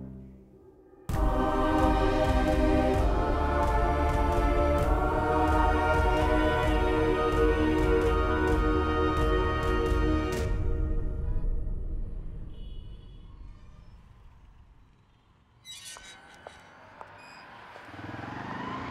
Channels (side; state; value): both; identical; correlation 1.00